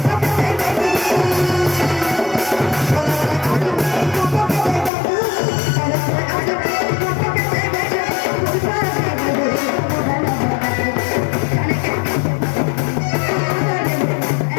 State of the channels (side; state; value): right; drops out; at 4.9 s